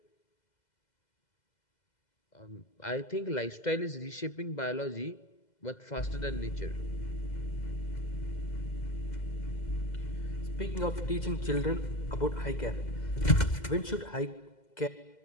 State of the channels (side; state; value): right; late; 2.0 ms